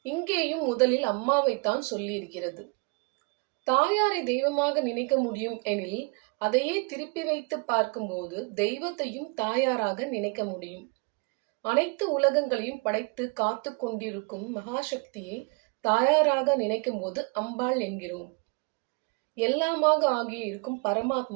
இங்கேயும் முதலில் அம்மாவைத்தான் சொல்லியிருக்கிறது. தாயாரை தெய்வமாக நினைக்க முடியும் எனில் அதையே திருப்பி வைத்து பார்க்கும்போது தெய்வத்தையும் தாயாராக நினைக்க முடியும். அனைத்து உலகங்களையும் படைத்து காத்து கொண்டிருக்கும் மகாசக்தியை தாயாராக நினைக்கும் போது அம்பாள் என்கிறோம். எல்லாமாக ஆகிய இருக்கும்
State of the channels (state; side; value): quieter; left; 30.5 dB